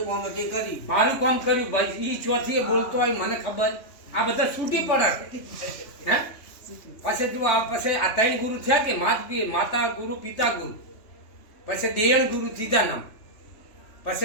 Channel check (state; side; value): late; right; 3.2 ms